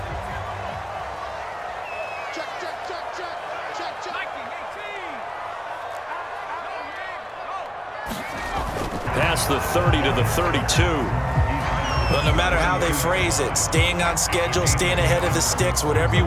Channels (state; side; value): identical; both; correlation 1.00